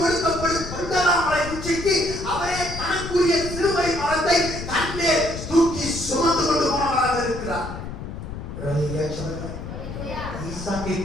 கொடுக்கப்படும் கொண்டலாமலை உச்சிக்கு அவரே தனக்குரிய சிலுவை மரத்தை தன்னே தூக்கி சுமந்து கொண்டு போனவராக இருக்கிறார். ஈசாக்கை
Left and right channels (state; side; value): noise; left; rumble, 8 dB below the sound